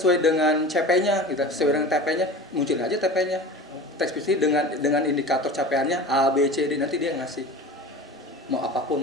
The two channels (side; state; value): both; normal; correlation 0.35